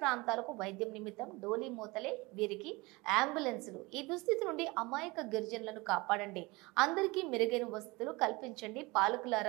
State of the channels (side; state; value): left; quieter; 23.8 dB